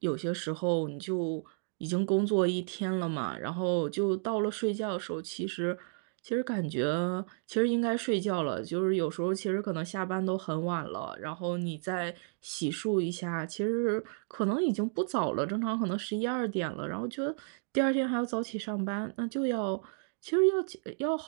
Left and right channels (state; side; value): silent; left; digital silence